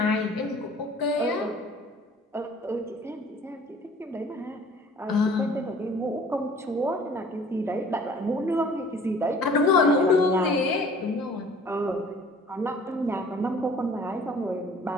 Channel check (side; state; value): both; normal; correlation 0.50